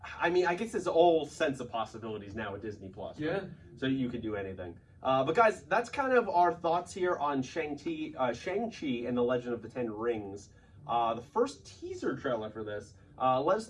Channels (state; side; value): identical; both; correlation 1.00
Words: I mean, I guess there's all sense of possibilities now with Disney Plus. Right? Yeah. So you could do anything. But guys, that's kind of our thoughts here on Shang-Chi and the Legend of the Ten Rings. The first teaser trailer for this. Let us